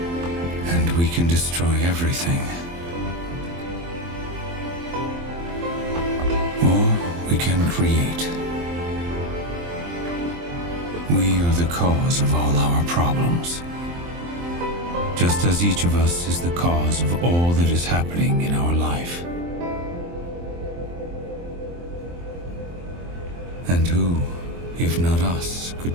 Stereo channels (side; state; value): left; late; 23 ms